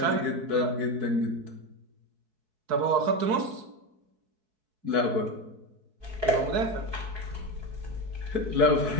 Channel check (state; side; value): late; left; 4.6 ms